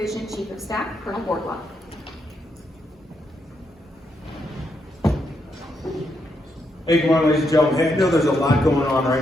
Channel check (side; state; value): both; normal; correlation 0.80